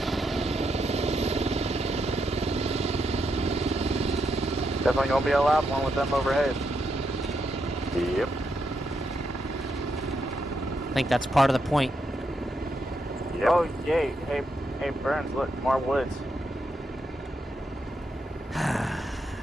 Definitely gonna be a loud one with them overhead. Yep. I think that's part of the point. Yep. Oh, yay. Hey, Burns, look, more woods.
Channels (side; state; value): both; normal; correlation 0.81